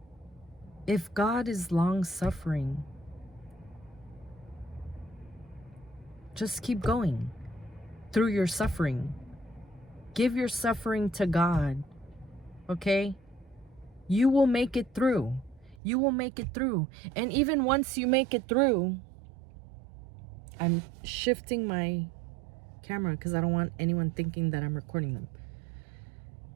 if God is long suffering, just keep going through your suffering. Give your suffering to God. Okay? You will make it through. You will make it through. And even once you make it through, I'm shifting my camera because I don't want anyone thinking that I'm recording them.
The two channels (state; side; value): drops out; left; at 15.8 s